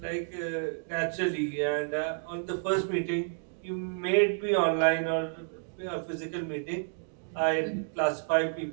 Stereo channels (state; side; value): silent; left; digital silence